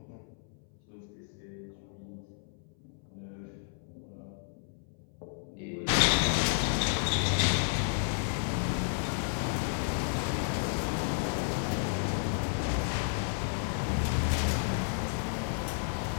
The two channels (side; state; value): right; silent; 56 dB below the other